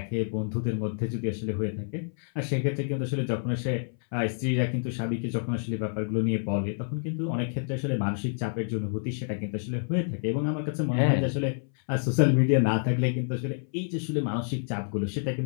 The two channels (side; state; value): right; silent; 59 dB below the other